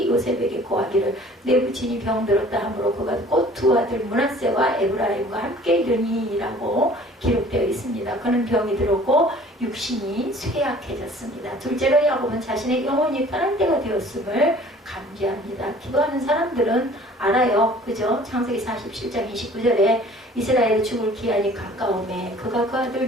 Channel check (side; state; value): both; normal; correlation 0.50